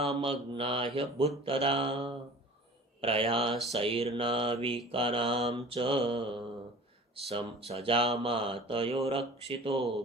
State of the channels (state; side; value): normal; both; correlation 0.43